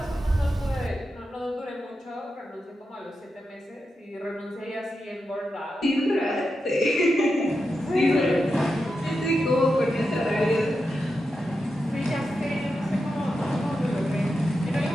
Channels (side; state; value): both; normal; correlation 0.88